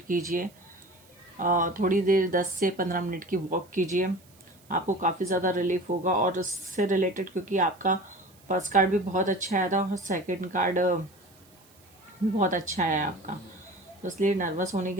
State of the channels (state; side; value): noise; right; hiss, 28 dB below the sound